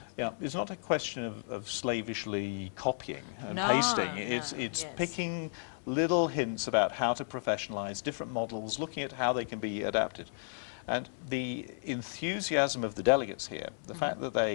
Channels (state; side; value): silent; right; 56 dB below the other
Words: Yeah, it's not a question of slavishly copying and pasting. It's picking little hints about how to professionalize different models, looking at how they can be adapted. And the enthusiasm of the delegates here, the fact that